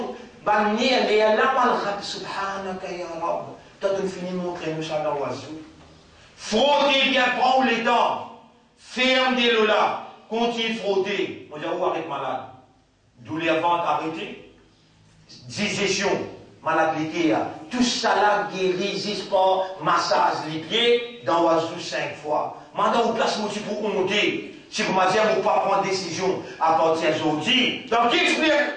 bannière, et Allah malade, subhanaka ya Rabb. Toi, tu finis de montrer nous ça dans l'oiseau. Frottez bien, prends les dents. Fermez-le là. Continue de frotter. On dit, où arrête malade? Douleur ventre arrêtée. Digestion, malade tout ça là guérit juste par massage les pieds dans l'oiseau 5 fois. Maintenant, on place mon petit pour monter. Si vous m'avez dit, vous ne pas prendre décision à partir d'aujourd'hui. Donc,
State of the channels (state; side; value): identical; both; correlation 1.00